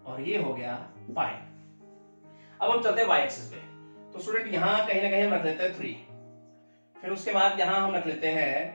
और ये हो गया पाई। अब हम चलते हैं y एक्सिस पे, तो स्टूडेंट यहाँ कहीं ना कहीं हम रख लेते हैं 3, फिर उसके बाद यहाँ हम रख लेते हैं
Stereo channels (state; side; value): inverted; both; correlation -1.00